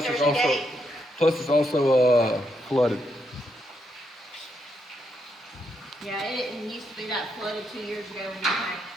There's it's a also gate. flooded. Yeah, it didn't used to be that flooded 2 years ago when you came.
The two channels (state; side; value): normal; both; correlation 0.79